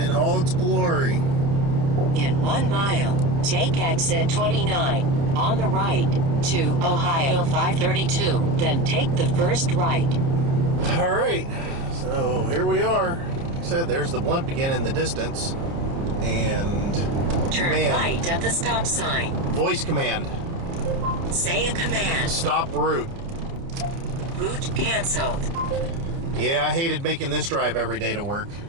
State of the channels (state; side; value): late; left; 29 ms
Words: all its glory. In 1 mile, take exit 29 on the right to Ohio 532, then take the first right. All right, so here we are. Like I said, there's the blimp again in the distance, and turn right at the stop sign. Voice command. Say a command. Stop route. Route canceled. Yeah, I hated making this drive every day to work,